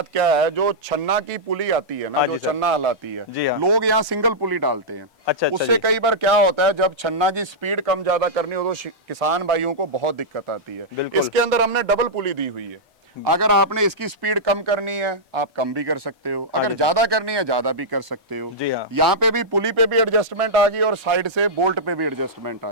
क्या है, जो छन्ना की पुली आती है ना, जो छन्ना हलाती है, लोग यहाँ सिंगल पुली डालते हैं। अच्छा, उससे कई बार क्या होता है, जब छन्ना की स्पीड कम ज्यादा करनी हो तो किसान भाइयों को बहुत दिक्कत आती है। इसके अंदर हमने डबल पुली दी हुई है। अगर आपने इसकी स्पीड कम करनी है आप कम भी कर सकते हो, अगर ज्यादा करनी है ज्यादा भी कर सकते हो। यहाँ पे भी पुली पे भी एडजस्टमेंट आ गई और साइड से बोल्ट पे भी एडजस्टमेंट आ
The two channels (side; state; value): both; normal; correlation -0.10